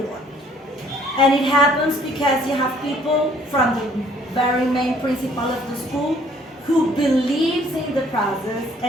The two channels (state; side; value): normal; both; correlation 0.60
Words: it. And it happens because you have people from the very main principal of the school who believes in the process